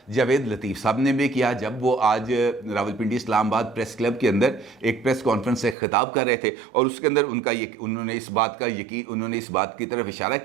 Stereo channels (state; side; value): drops out; left; at 5.8 s